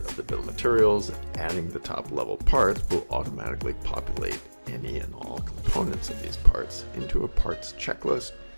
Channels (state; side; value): inverted; both; correlation -1.00